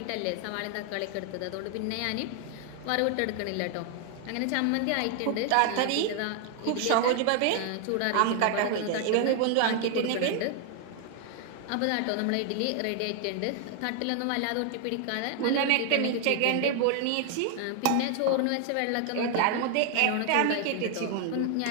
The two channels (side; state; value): both; different; correlation 0.00